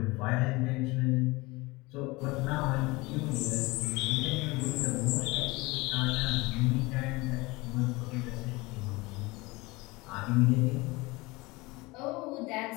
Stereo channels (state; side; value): quieter; right; 23.1 dB